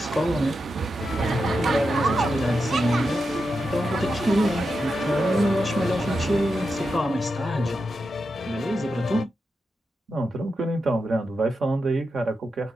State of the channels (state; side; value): normal; both; correlation 0.88